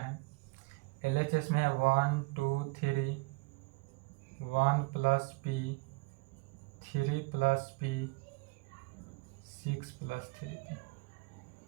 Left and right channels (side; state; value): left; quieter; 27.0 dB